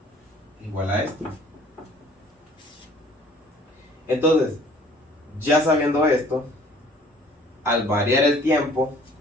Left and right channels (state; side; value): normal; both; correlation 0.54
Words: es igual a esto. Entonces, ya sabiendo esto, al variar el tiempo,